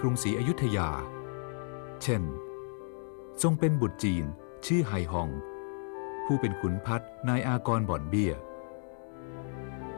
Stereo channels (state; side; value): silent; right; 56 dB below the other